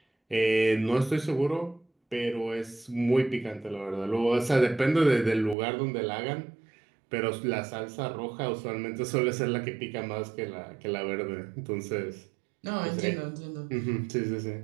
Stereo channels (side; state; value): left; drops out; at 5.6 s